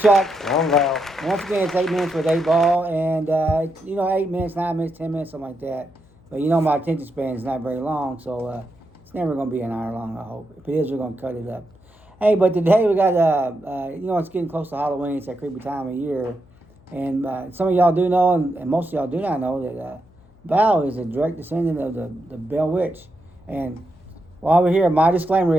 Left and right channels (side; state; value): left; noise; hum, 28 dB below the sound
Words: I'm Val. Once again, it's 8 minutes with 8 ball, and 8 minutes, 9 minutes, 10 minutes, something like that. But my attention span is not very long, so it's never going to be an hour long. I hope. If it is, we're going to cut it up. Hey, but today we got it's getting close to Halloween. It's that creepy time of year, and some of y'all do know, and most of y'all do not know that Val is a direct descendant of the Bell Witch. And while we're here, my